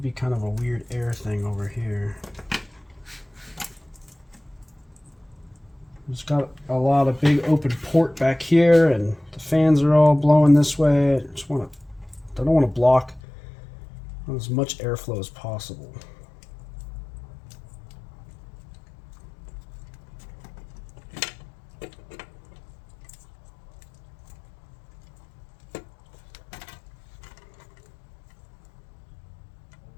kind of a weird air thing over here. It's got a lot of big open port back here, and the fans are all blowing this way. I don't want to block as much airflow as possible.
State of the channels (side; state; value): right; drops out; at 13.2 s